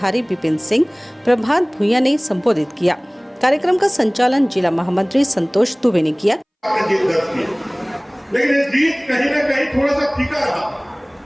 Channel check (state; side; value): identical; both; correlation 1.00